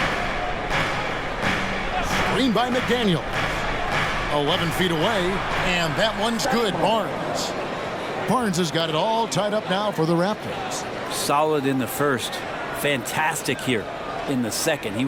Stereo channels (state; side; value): identical; both; correlation 1.00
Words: Screen by McDaniel. 11 feet away, and that one's good. Barnes. Barnes has got it all tied up now for the Raptors. Solid in the first. Fantastic here in the second. He